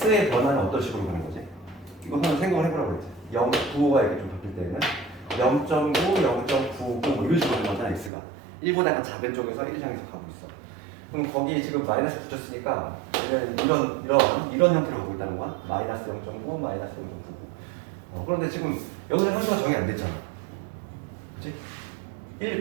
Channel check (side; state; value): left; drops out; at 8.1 s